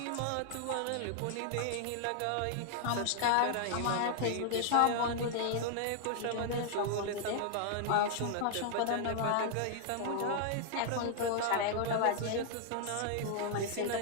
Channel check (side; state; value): both; different; correlation -0.01